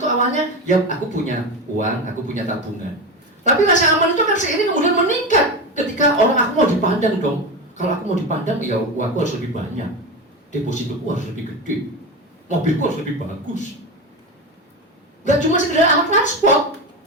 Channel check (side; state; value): both; normal; correlation 0.21